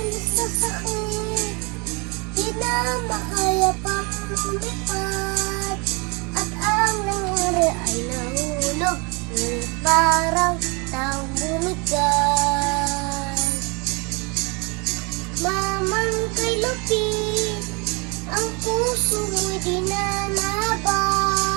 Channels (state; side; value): quieter; left; 30.5 dB